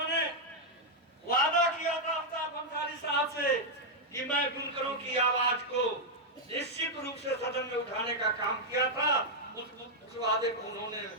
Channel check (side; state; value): both; normal; correlation -0.02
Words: वादा किया था अल्ताफ अंसारी साहब से कि मैं बुनकरों की आवाज को निश्चित रूप से सदन में उठाने का काम किया था। उस वादे को उन्होंने